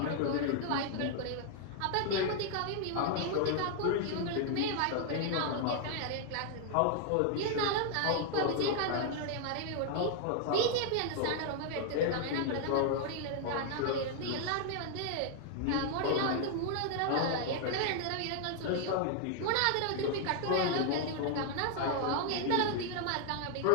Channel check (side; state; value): both; different; correlation 0.00